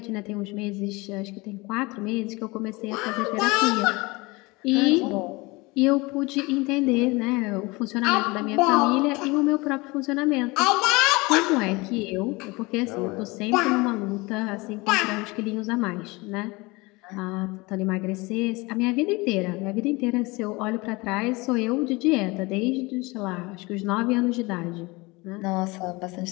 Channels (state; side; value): quieter; right; 24.2 dB